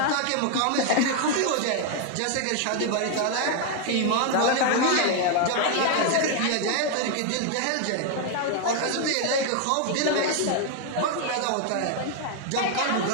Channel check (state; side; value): different; both; correlation 0.00